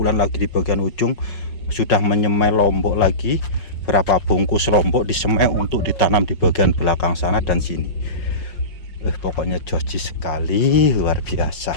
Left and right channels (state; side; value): late; right; 5.4 ms